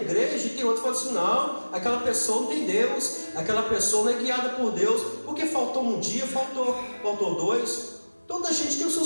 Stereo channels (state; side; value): inverted; both; correlation -1.00